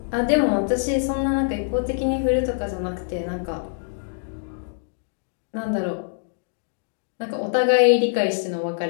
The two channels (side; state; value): right; silent; digital silence